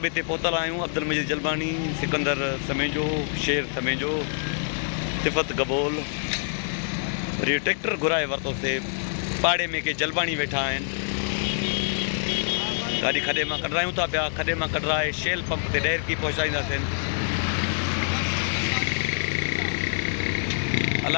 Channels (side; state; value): right; silent; 61 dB below the other